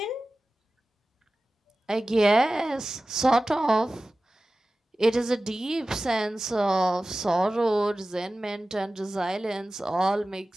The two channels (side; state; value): both; normal; correlation 0.96